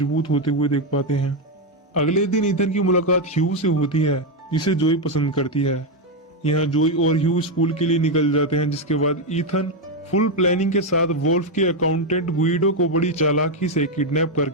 होते हुए देख पाते हैं। अगले दिन ईथन की मुलाकात ह्यू से होती है जिसे जोई पसंद करती है। यहाँ जोई और ह्यू स्कूल के लिए निकल जाते हैं, जिसके बाद ईथन फुल प्लानिंग के साथ वोल्फ के अकाउंटेंट गुइडो को बड़ी चालाकी से किडनैप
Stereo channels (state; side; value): normal; both; correlation 0.05